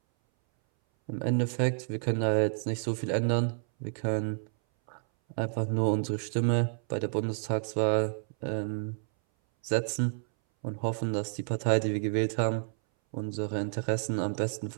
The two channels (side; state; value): left; silent; 58 dB below the other